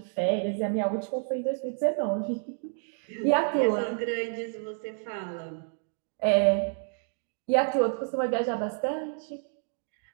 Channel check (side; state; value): left; silent; 58 dB below the other